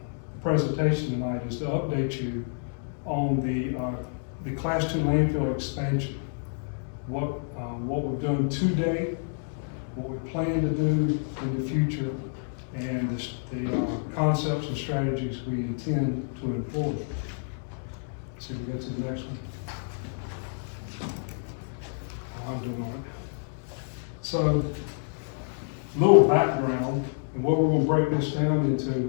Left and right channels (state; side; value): silent; right; digital silence